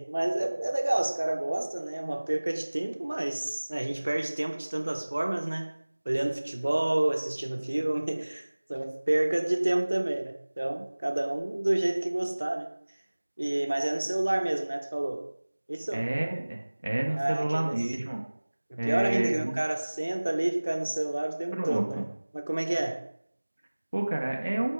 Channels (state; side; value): inverted; both; correlation -1.00